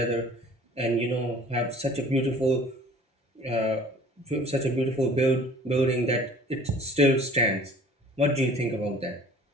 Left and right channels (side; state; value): both; normal; correlation 0.48